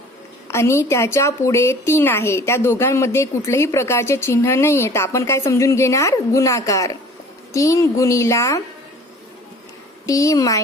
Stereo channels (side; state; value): both; normal; correlation 0.48